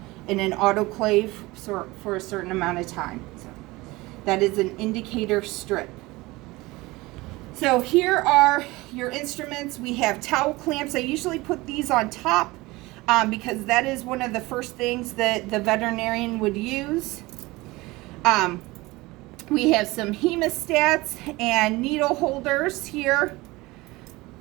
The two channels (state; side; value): quieter; left; 21.2 dB